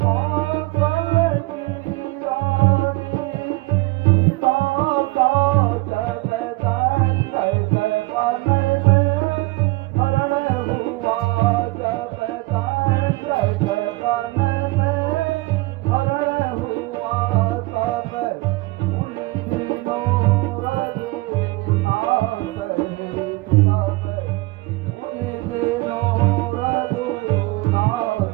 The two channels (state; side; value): quieter; left; 22.3 dB